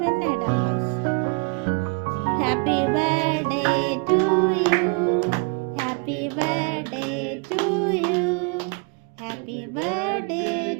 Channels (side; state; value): left; quieter; 34.4 dB